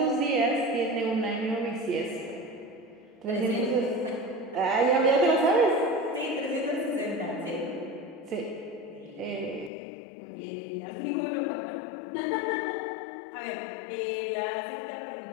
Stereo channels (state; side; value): drops out; right; at 9.7 s